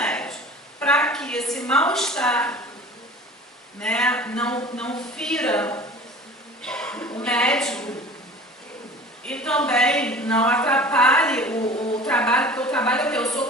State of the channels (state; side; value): normal; both; correlation 0.42